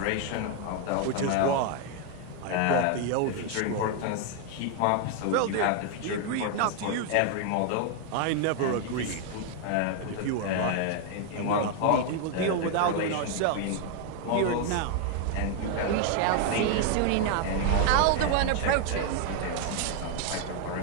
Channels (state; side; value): different; both; correlation 0.01